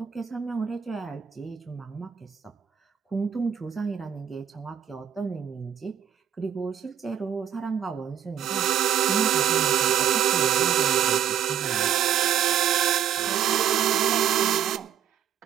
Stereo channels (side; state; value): left; quieter; 9.4 dB